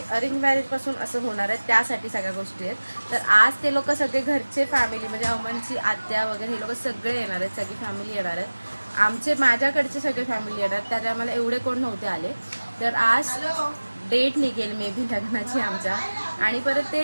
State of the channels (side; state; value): both; inverted; correlation -1.00